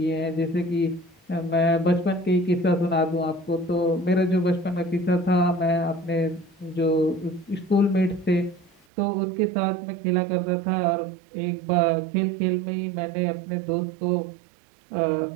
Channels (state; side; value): drops out; left; at 8.8 s